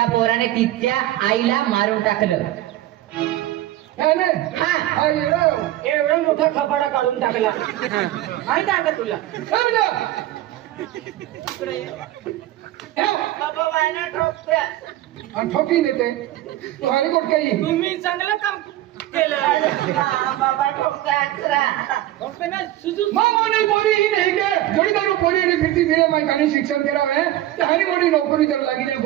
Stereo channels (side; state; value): left; quieter; 14.7 dB